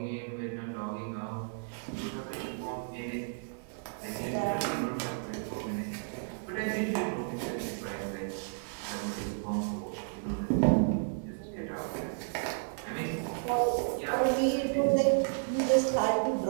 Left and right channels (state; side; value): silent; left; 56 dB below the other